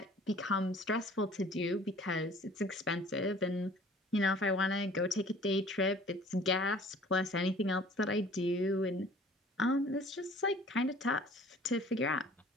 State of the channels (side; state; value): both; normal; correlation 0.51